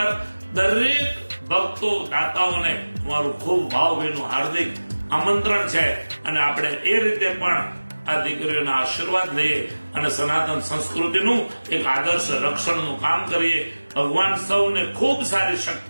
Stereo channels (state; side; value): inverted; both; correlation -1.00